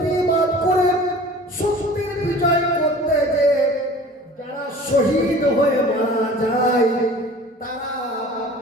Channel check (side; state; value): both; normal; correlation 0.43